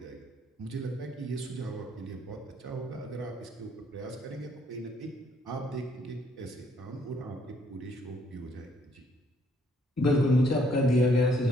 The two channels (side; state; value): both; normal; correlation 0.67